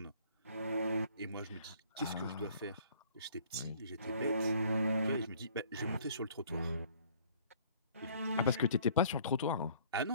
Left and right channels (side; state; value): both; inverted; correlation -0.56